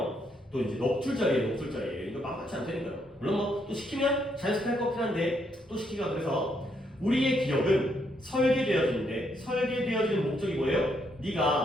또 이제 넉줄짜리예요. 이거 만만치 않다니까요. 물론 뭐 또 시키면 자연스럽게 할 것 같긴 한데 또 시키기가 그래서 우리의 기억은 설계되어지는데 설계되어지는 목적이 뭐예요?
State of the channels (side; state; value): both; normal; correlation 0.75